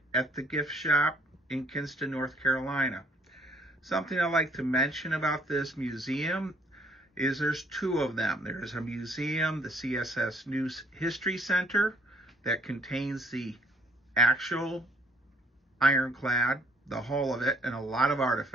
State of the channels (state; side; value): normal; both; correlation 0.63